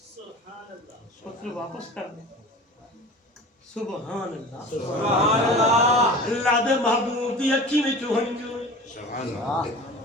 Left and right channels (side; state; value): both; normal; correlation 0.37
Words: پتر واپس کر دے سبحان اللہ اللہ دے محبوب دی اکھی میں چوہنجو